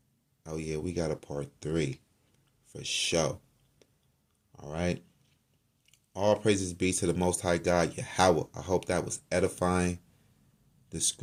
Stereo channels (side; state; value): both; identical; correlation 1.00